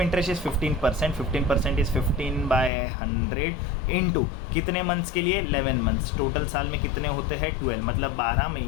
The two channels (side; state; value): right; drops out; at 2.7 s